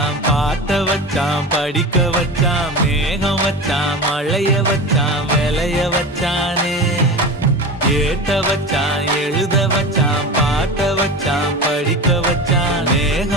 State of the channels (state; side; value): normal; both; correlation 0.29